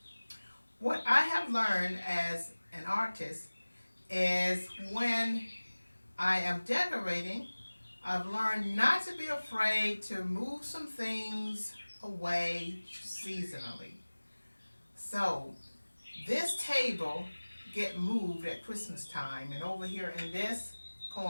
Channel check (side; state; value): both; inverted; correlation -1.00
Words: what I have learned as an artist is when I am decorating, I've learned not to be afraid to move some things away seasonally. So this table get moved at Christmas time, and over here in this